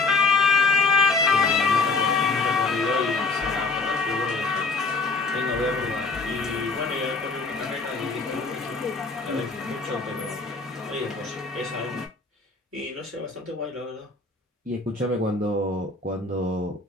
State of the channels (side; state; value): right; quieter; 4.0 dB